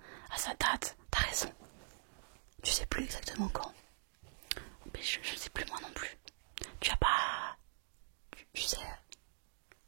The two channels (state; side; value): silent; left; digital silence